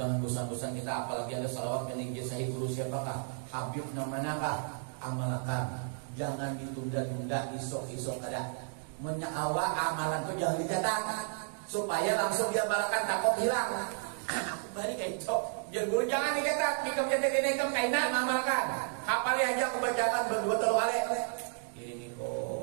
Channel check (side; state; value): left; silent; 56 dB below the other